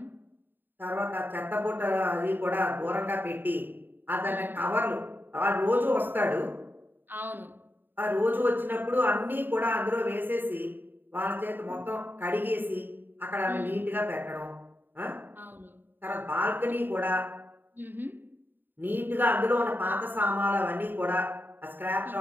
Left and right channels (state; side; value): late; left; 0.092 ms